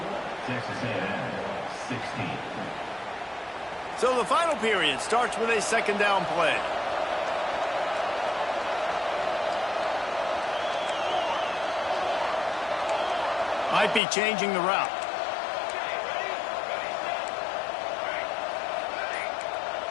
So the final period starts with a second down play. Might be changing the route.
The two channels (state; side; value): drops out; right; at 14.0 s